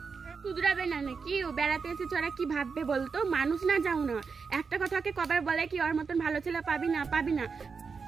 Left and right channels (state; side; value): quieter; left; 5.3 dB